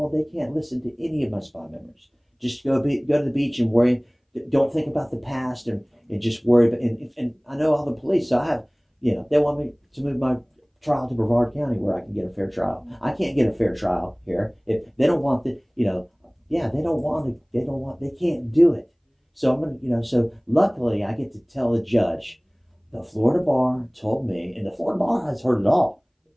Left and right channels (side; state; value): both; identical; correlation 1.00